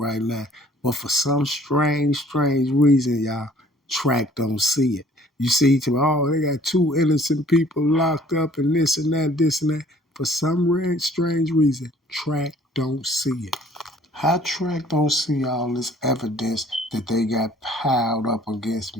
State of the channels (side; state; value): both; normal; correlation 0.55